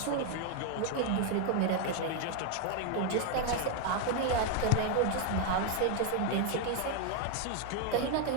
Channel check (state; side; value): different; both; correlation 0.01